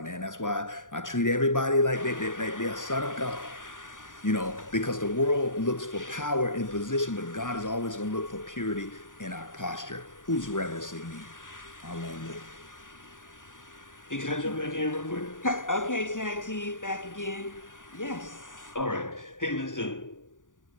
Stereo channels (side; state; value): right; late; 0.88 ms